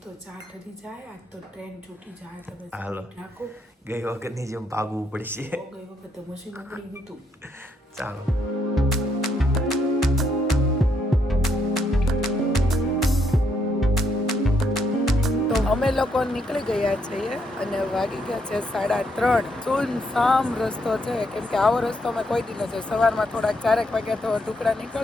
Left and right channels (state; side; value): normal; both; correlation 0.75